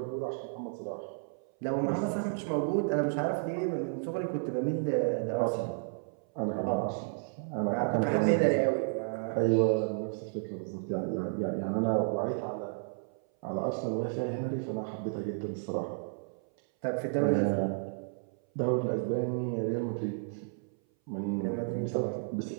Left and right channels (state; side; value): silent; left; 56 dB below the other